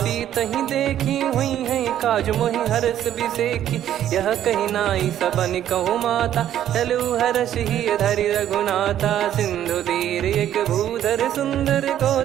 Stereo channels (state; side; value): quieter; left; 11.2 dB